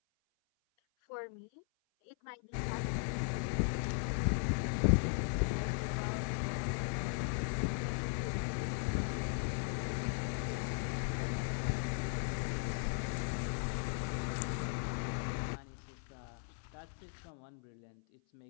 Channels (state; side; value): silent; right; 53 dB below the other